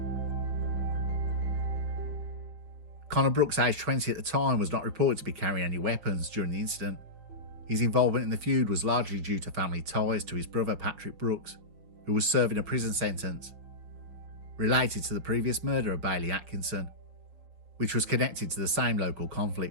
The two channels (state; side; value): late; left; 5.8 ms